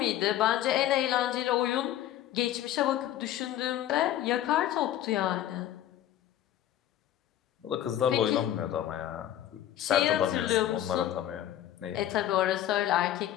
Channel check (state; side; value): quieter; right; 12.1 dB